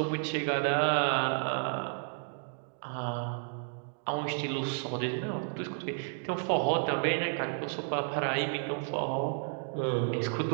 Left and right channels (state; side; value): silent; left; 56 dB below the other